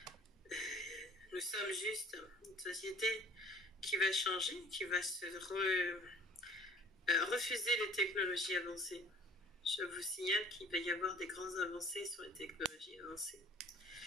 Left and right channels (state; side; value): normal; both; correlation 0.52